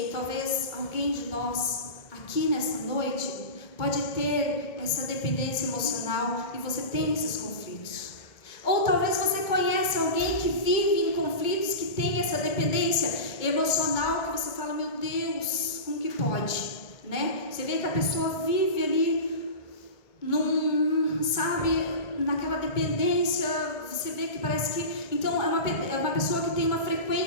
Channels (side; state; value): right; late; 2.2 ms